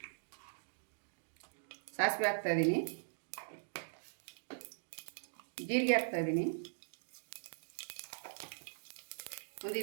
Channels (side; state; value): left; silent; digital silence